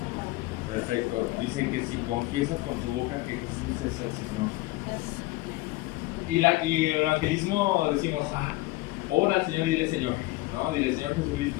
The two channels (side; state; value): right; quieter; 20.0 dB